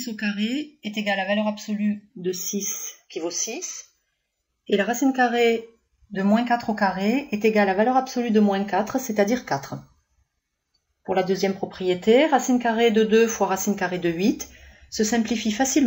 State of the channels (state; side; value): identical; both; correlation 1.00